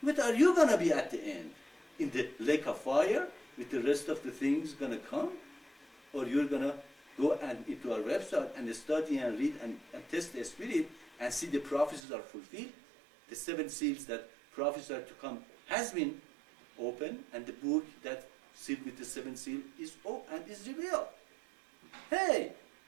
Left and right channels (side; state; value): left; drops out; at 12.0 s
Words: what are you going to be at the end? In the lake of fire, with the rest of the things going to come? Or you're going to go into our website and study and read and test the spirit and see the prophecies are fulfilled? The 7 seals that prophesied to come has been opened, and the book that sealed with the 7 seal is open and is revealed. Hey!